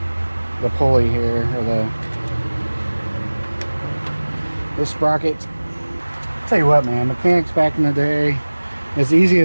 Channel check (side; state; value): both; inverted; correlation -1.00